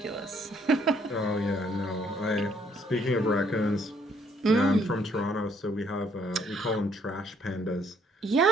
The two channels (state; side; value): normal; both; correlation 0.66